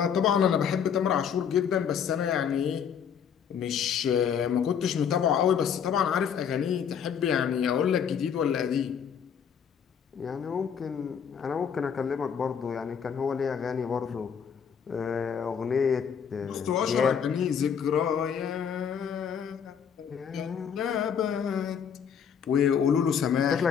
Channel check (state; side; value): quieter; right; 7.6 dB